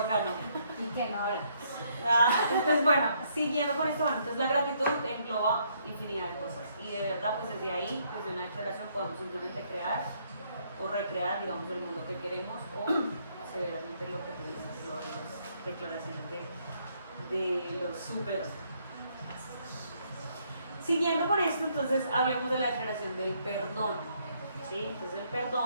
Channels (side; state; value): both; inverted; correlation -0.70